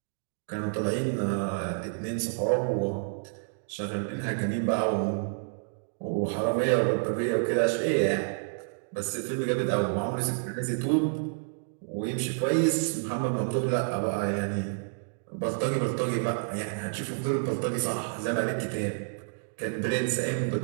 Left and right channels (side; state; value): left; silent; digital silence